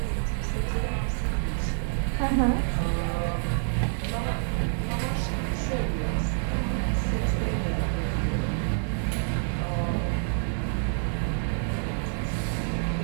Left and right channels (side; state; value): left; silent; 57 dB below the other